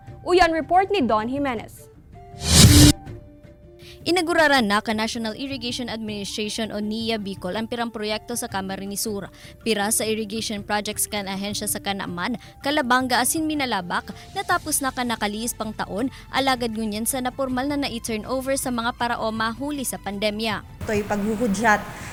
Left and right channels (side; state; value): both; identical; correlation 1.00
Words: Uyan report ni Don Jimenez. Inaguraran na ka National Irrigation Administration o NIA Bicol ang pirang proyekto sa Camarines Sur. Pira sa irrigation projects kan ahensya sa Kanaman, Kalabanga asin Minalabak, natapos na nakaliis pang taon, alagad ngunyan sa napormal na na-turnover sa mga paraoma huli sa pandemya. Ito'y paghuhudyat